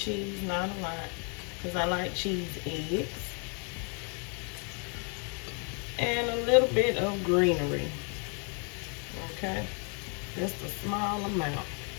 not a lot, because I like cheese eggs. And a little bit of greenery, okay? Just a small amount.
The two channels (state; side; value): quieter; right; 38.1 dB